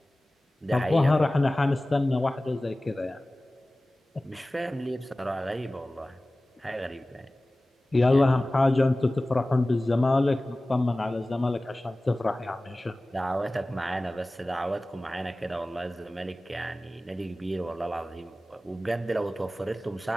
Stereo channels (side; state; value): both; normal; correlation 0.97